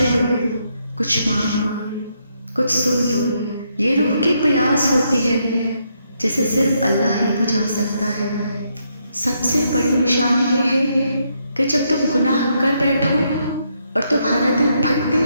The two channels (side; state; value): both; inverted; correlation -0.77